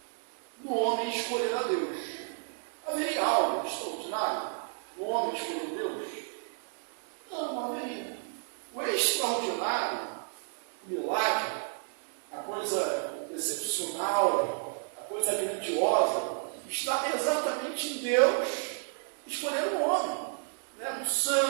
no homem escolher a Deus. Haveria algo extraordinário no homem escolher Deus? Não haveria. O extraordinário, o milagre, a coisa excepcional, a coisa grandiosa, está exatamente em Deus escolher o homem, né? O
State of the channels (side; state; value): left; silent; 57 dB below the other